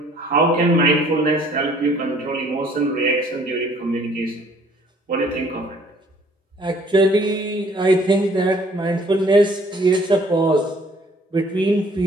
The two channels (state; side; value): normal; both; correlation 0.58